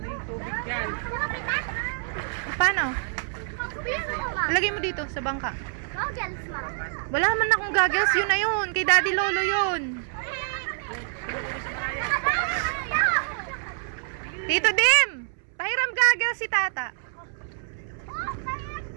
yung tubig dyan? Paano? Sabihan ako, ma. Lagay mo dito sa bangka. Goggles, ma. Wala man akong goggles. Yun na yun. Kay Daddy Lolo yun. Tito Dim! Pahiram goggles si Tata.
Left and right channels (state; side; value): silent; left; 60 dB below the other